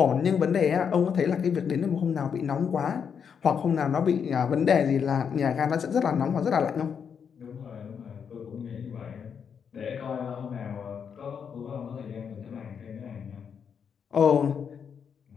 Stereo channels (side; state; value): right; quieter; 7.1 dB